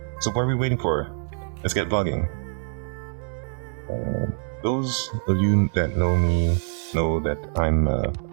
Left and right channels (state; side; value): silent; left; digital silence